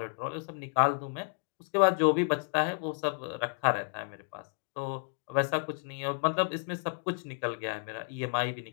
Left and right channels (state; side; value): silent; right; digital silence